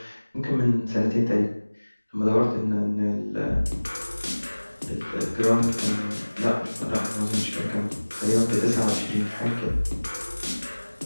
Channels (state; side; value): inverted; both; correlation -1.00